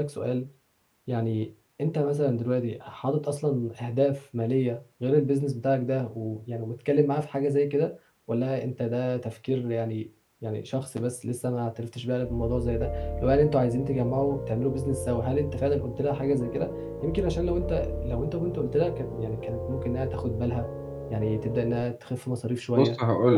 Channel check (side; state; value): both; identical; correlation 1.00